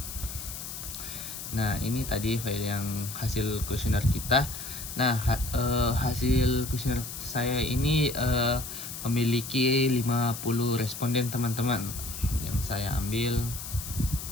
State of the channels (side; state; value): left; noise; hiss, 9 dB below the sound